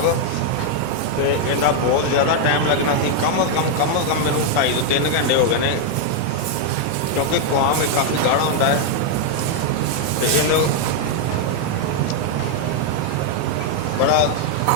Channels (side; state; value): both; different; correlation 0.00